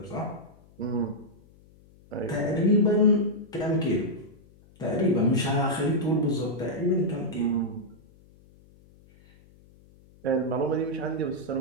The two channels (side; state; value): left; noise; hum, 27 dB below the sound